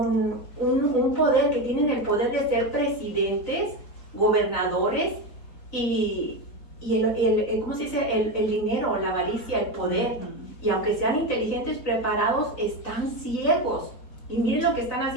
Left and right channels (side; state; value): right; late; 4.2 ms